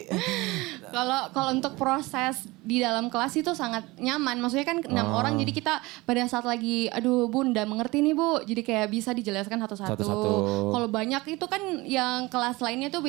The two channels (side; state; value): left; quieter; 21.9 dB